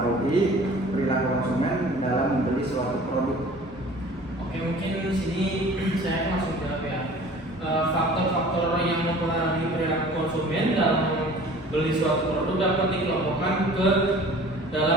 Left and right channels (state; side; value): normal; both; correlation 0.46